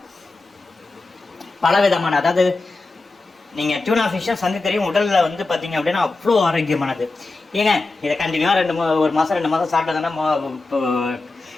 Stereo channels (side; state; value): right; quieter; 3.4 dB